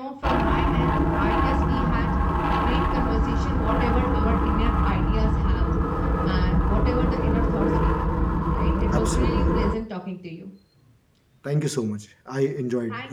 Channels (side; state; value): both; identical; correlation 1.00